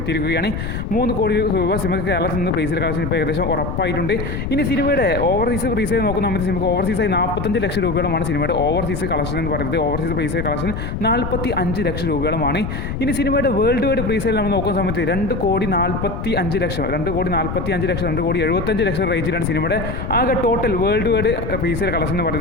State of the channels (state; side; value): noise; left; rumble, 4 dB below the sound